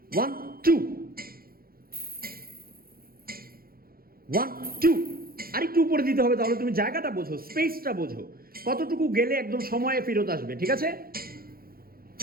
1 2 1 2। আরেকটু উপরে দিতে হবে, তাহলে তুমি জায়গাটা বোঝো, স্পেসটা বোঝো, কতটুকু গেলে একদম সময়ে ফেরত আসবে। ঠিক আছে,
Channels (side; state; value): left; late; 0.43 ms